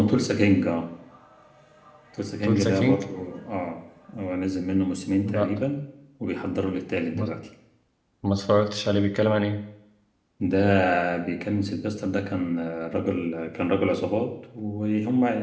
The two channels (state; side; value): identical; both; correlation 1.00